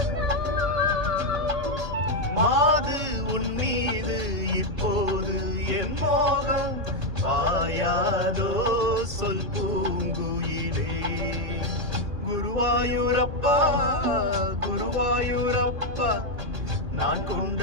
மாது உன் மீது இப்போது என் மோகம் பாயாதோ சொல் பூங்குயிலே. குருவாயூரப்பா குருவாயூரப்பா, நான்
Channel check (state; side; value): late; left; 2.6 ms